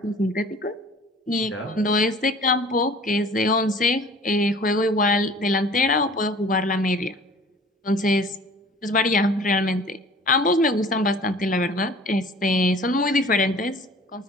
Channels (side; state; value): both; normal; correlation 0.48